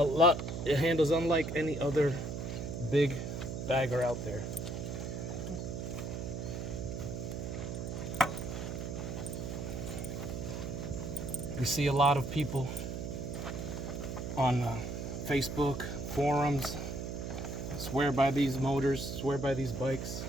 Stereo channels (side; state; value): right; noise; hum, 5 dB below the sound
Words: it handles unlike any other big bagger out there. You see a lot of people on Facebook forums swear by these motors, swear by these bikes.